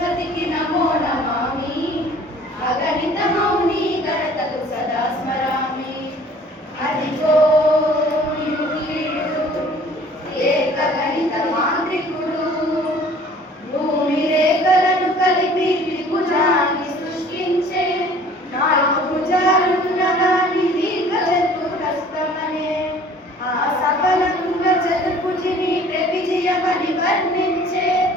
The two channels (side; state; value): both; normal; correlation 0.51